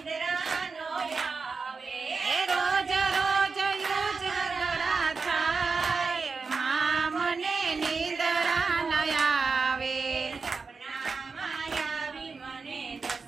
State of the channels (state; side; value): quieter; left; 4.6 dB